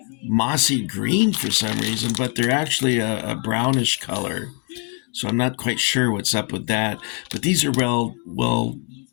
mossy green for some reason, but they're actually a brownish color. So I'm not quite sure what's up with that. But these are well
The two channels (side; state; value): right; quieter; 38.4 dB